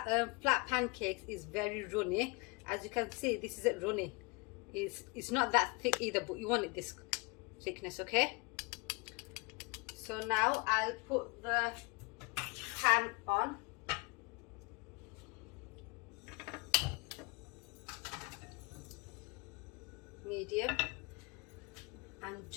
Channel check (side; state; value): right; quieter; 29.1 dB